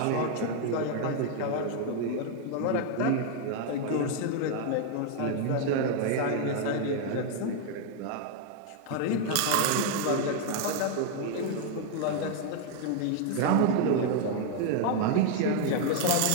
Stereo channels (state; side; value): different; both; correlation 0.00